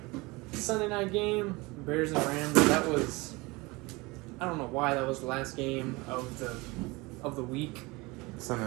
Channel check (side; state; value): left; quieter; 24.0 dB